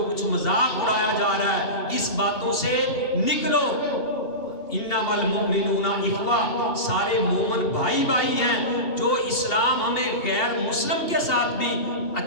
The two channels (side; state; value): right; late; 2.8 ms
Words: کچھ مذاق اڑایا جا رہا ہے اس باتوں سے نکلو۔ انما المؤمنون اخوہ، سارے مومن بھائی بھائی ہیں۔ جو اسلام ہمیں غیر مسلم کے ساتھ بھی